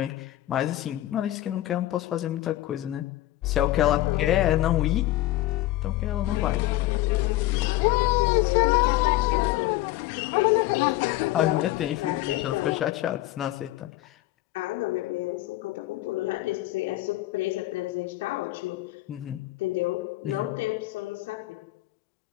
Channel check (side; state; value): right; quieter; 16.1 dB